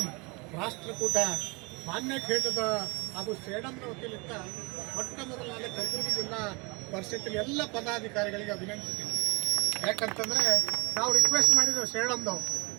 ರಾಷ್ಟ್ರಕೂಟ ಮಾನ್ಯ ಖೇಟದ ಹಾಗೂ ಸೇಡಂನ ವತಿಯಿಂದ ಮೊಟ್ಟ ಮೊದಲನೇ ಕಲಬುರಗಿ ಜಿಲ್ಲಾ ಪರಿಷತ್ತಿನ ಎಲ್ಲ ಪದಾಧಿಕಾರಿಗಳಿಗೆ ಅಭಿನಂದಿಸ್ತೀನಿ. ಯಾಕಂತಂದರೆ ನಾವು ರಿಕ್ವೆಸ್ಟ್ ಮಾಡಿದ್ದೇವೆ ಸೇಡಂದವು,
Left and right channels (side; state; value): left; quieter; 28.0 dB